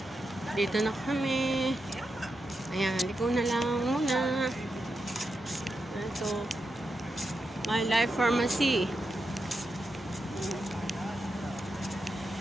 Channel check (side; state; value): both; normal; correlation 0.87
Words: Dito na kami. Ayan, liko na lang muna. Ito. My Life Pharmacy.